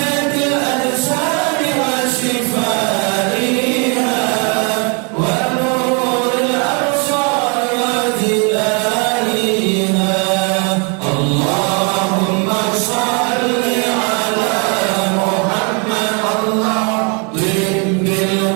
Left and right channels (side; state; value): left; quieter; 34.8 dB